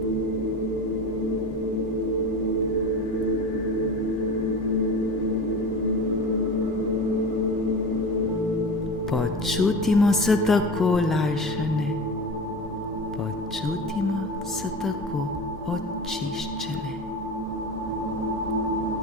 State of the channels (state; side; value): normal; both; correlation 0.31